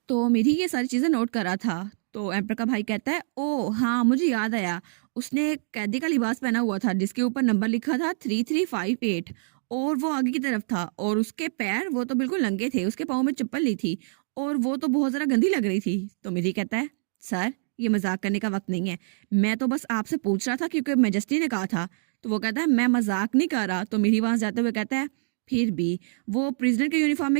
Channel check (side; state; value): left; silent; digital silence